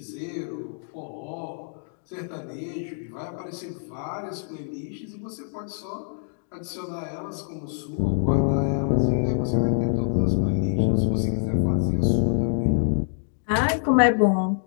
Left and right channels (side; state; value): right; silent; digital silence